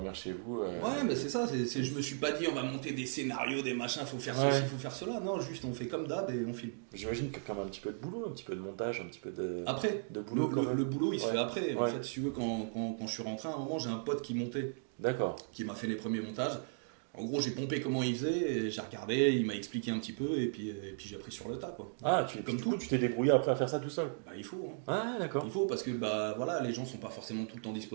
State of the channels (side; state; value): left; silent; digital silence